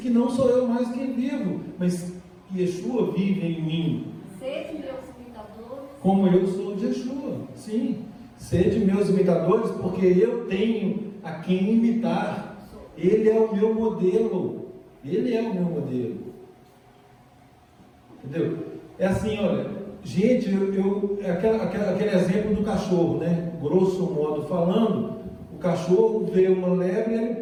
que não sou eu mais quem vivo, mas Yeshua vive em mim. Sede meus imitadores. Como eu sou de Yeshua. Sim. Sede meus imitadores, porque eu tenho a quem imitar. Ele é o meu modelo. Ele é o meu modelo. Entendeu? É assim, olha, gente, aquele exemplo do cachorro, né? Grosso modo falando, o cachorro vê uma lebre e ele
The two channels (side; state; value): both; identical; correlation 1.00